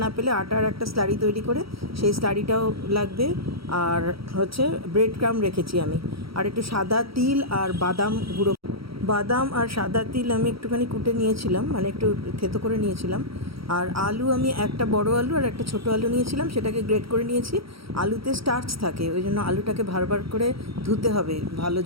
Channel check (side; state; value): left; late; 0.75 ms